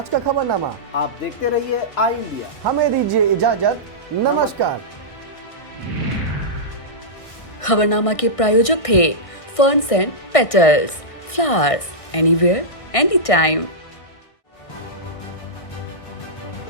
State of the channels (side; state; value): right; late; 1.6 ms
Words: का खबरनामा। आप देखते रहिए आई इंडिया। हमें दीजिए इजाजत। नमस्कार। खबरनामा के प्रायोजक थे ferns and petals, flowers anywhere any time.